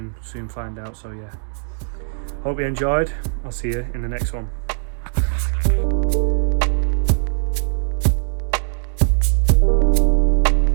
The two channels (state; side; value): silent; left; digital silence